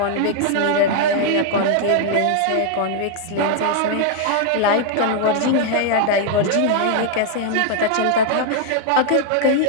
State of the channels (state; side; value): different; both; correlation 0.00